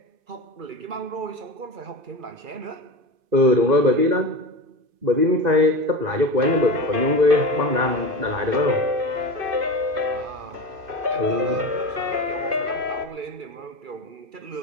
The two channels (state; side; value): late; left; 2.5 ms